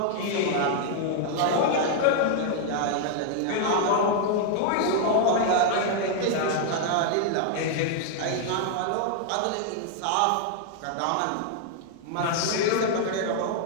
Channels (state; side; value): different; both; correlation 0.00